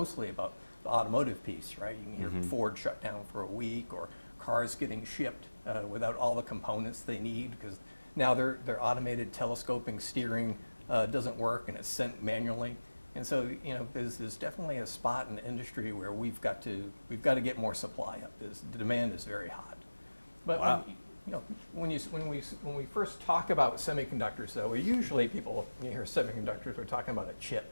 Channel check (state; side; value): inverted; both; correlation -1.00